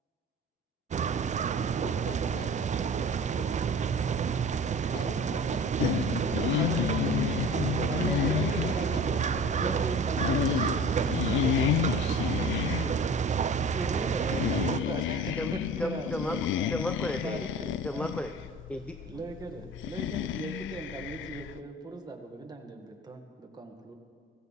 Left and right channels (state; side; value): normal; both; correlation 0.40